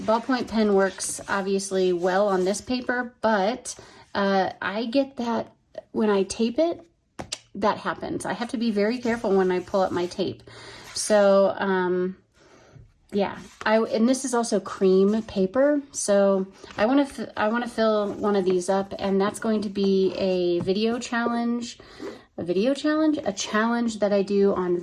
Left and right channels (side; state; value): both; identical; correlation 1.00